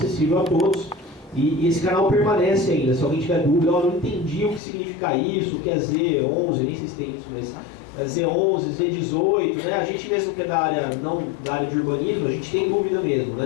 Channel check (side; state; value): right; drops out; at 4.6 s